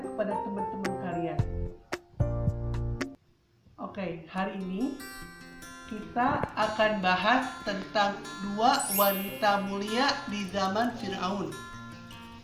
teman-teman kalian. Oke, hari ini kita akan bahas tentang dua wanita mulia di zaman Fir'aun.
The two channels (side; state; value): both; identical; correlation 1.00